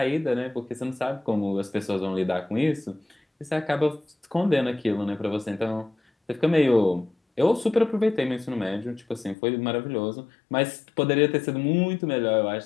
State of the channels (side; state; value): right; drops out; at 9.3 s